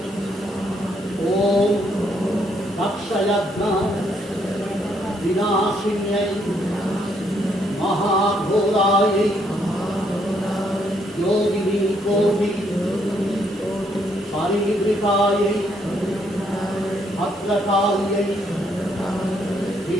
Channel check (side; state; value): both; normal; correlation 0.72